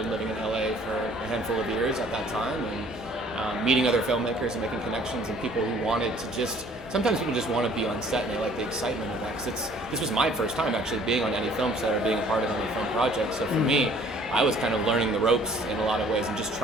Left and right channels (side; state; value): both; normal; correlation 0.56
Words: living in LA for a handful of years at that time, and meeting other filmmakers and making connections and people who wanted to just, sometimes people just want to be on set and they like the excitement of that, because this was my first time actually being on any film set or being a part of any film project. So for me, I was kind of learning the ropes in a lot of ways and just